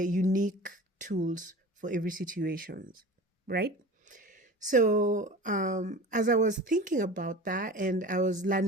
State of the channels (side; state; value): both; normal; correlation 0.37